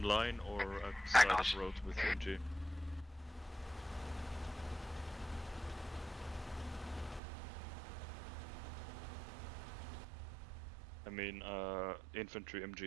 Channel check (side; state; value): left; drops out; at 7.2 s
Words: line or at the side of the road with MG? I mean, infantry